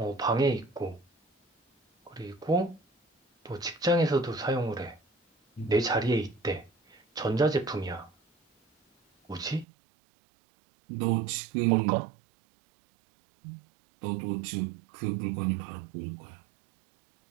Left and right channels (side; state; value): left; drops out; at 9.7 s